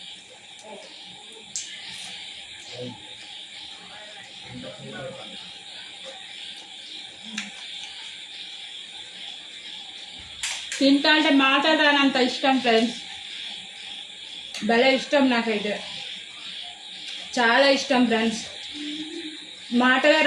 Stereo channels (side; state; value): both; identical; correlation 1.00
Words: తింటా అంటే మాట్లాడాలంత ఇష్టం ఫ్రెండ్స్. భలే ఇష్టం, నాకైతే చాలా ఇష్టం ఫ్రెండ్స్. మాటలే